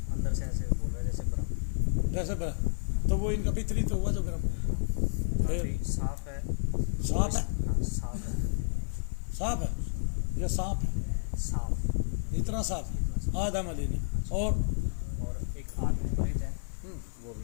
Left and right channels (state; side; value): silent; right; digital silence